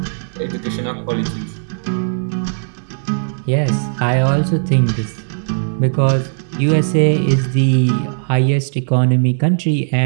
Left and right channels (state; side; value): silent; left; 68 dB below the other